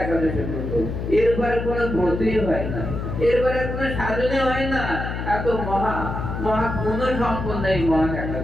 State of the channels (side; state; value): left; noise; hum, 5 dB below the sound